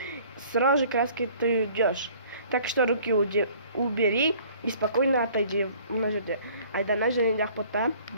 сразу же краской ты уйдешь. Так что руки убери и спокойно отойди. Айдана және де Ақбота,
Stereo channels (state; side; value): inverted; both; correlation -0.54